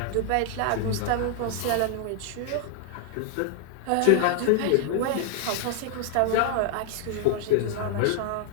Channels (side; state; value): both; different; correlation 0.00